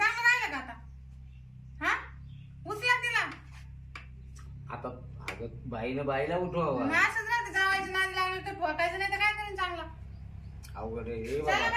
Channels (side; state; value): both; identical; correlation 1.00